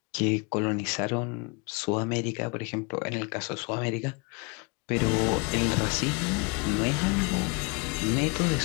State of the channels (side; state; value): right; quieter; 30.9 dB